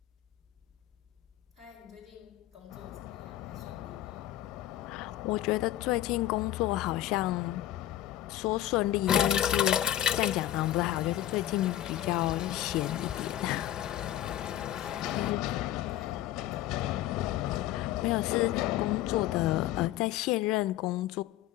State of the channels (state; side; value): quieter; right; 13.3 dB